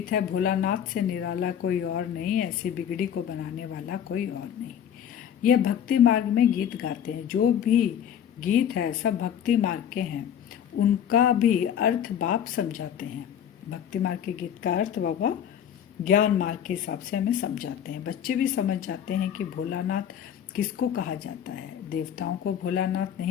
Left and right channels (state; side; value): quieter; right; 9.2 dB